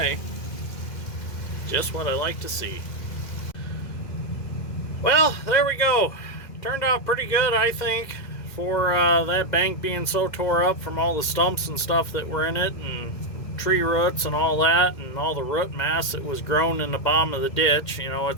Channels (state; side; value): late; right; 2.1 ms